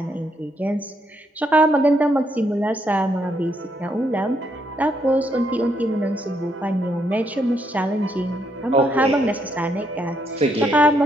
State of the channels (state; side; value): normal; both; correlation 0.75